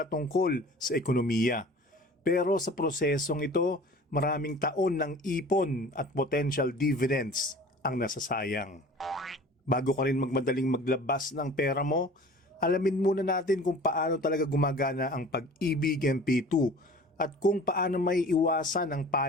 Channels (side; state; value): both; normal; correlation 0.44